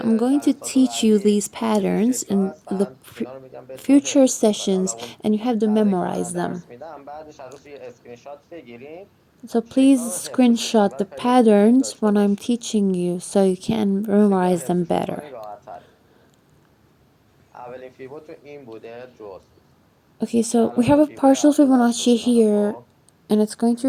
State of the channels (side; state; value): both; identical; correlation 1.00